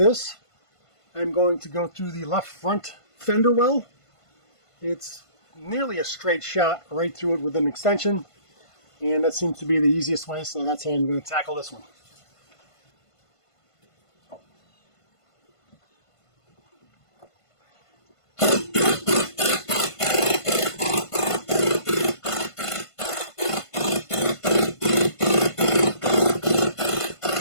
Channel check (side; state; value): right; late; 1.5 ms